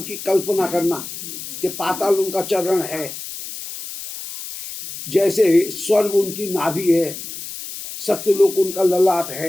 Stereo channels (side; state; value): left; noise; hiss, 10 dB below the sound